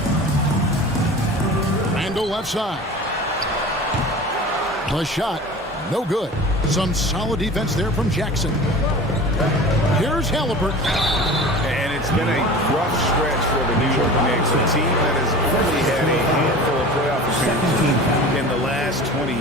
Randall left side. The shot, no good. Some solid defense there from Jackson. Here's Halliburton. And it's been a rough stretch for the New York Knicks, a team that has only had a handful of playoff appearances in the last 20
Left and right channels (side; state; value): both; normal; correlation 0.37